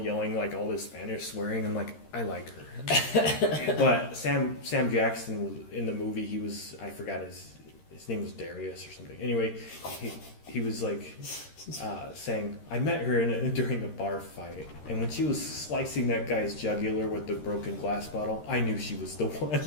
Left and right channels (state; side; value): late; right; 13 ms